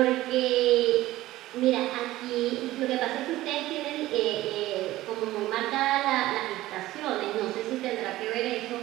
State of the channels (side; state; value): left; quieter; 16.3 dB